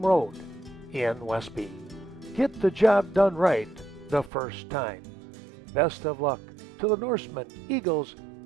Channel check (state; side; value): drops out; left; at 4.3 s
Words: Road in Westby. Get the job done right the first time. Best of luck to the Norsemen, Eagles,